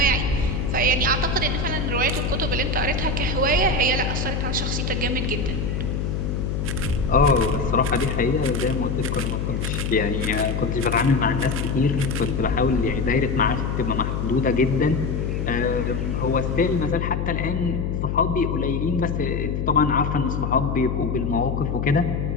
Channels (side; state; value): left; noise; hum, 1 dB below the sound